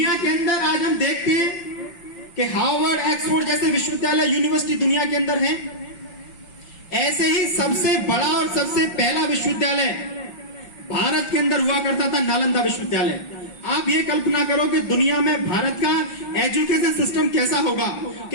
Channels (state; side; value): late; right; 5.8 ms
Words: के अंदर आज हम देखते हैं कि हार्वर्ड, ऑक्सफोर्ड जैसे विश्वविद्यालय, यूनिवर्सिटी दुनिया के अंदर हैं। ऐसे ही सबसे बड़ा और सबसे पहला विश्वविद्यालय भारत के अंदर हुआ करता था, नालंदा विश्वविद्यालय। आप ये कल्पना करो कि दुनिया में भारत का एजुकेशन सिस्टम कैसा होगा